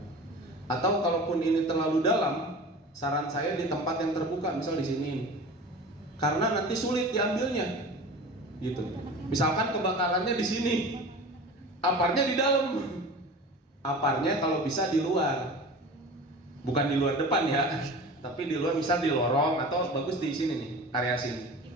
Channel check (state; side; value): normal; both; correlation 0.36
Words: Atau kalaupun ini terlalu dalam, saran saya di tempat yang terbuka, misal di sini. Karena nanti sulit diambilnya. Gitu. Misalkan kebakarannya di sini, aparnya di dalam. Aparnya kalau bisa di luar. Bukan di luar depan ya, tapi di luar, misal di lorong atau bagus di sini nih, area sini.